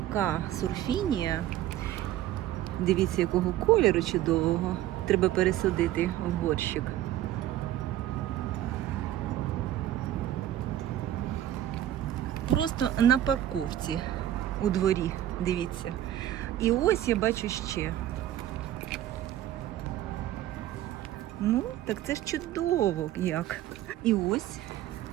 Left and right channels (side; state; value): left; quieter; 12.9 dB